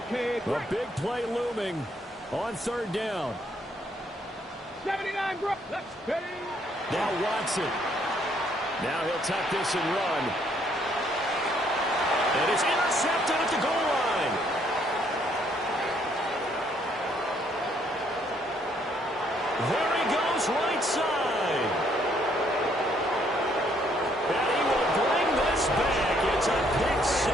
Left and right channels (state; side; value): normal; both; correlation 0.68